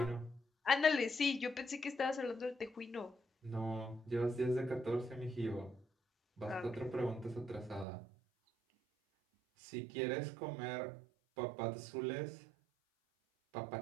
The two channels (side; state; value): left; drops out; at 7.9 s